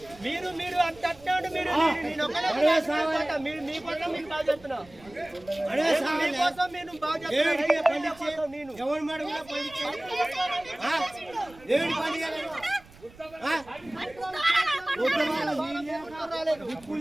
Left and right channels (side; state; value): right; noise; rumble, 23 dB below the sound